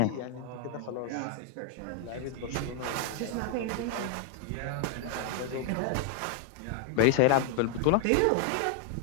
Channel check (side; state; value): both; different; correlation 0.00